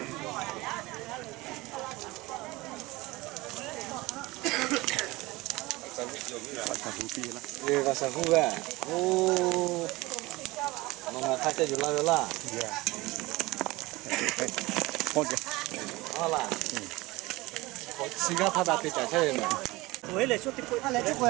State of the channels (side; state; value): left; quieter; 21.2 dB